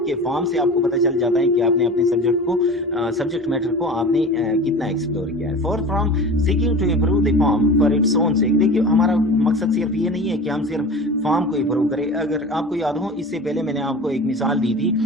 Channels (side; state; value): both; normal; correlation 0.35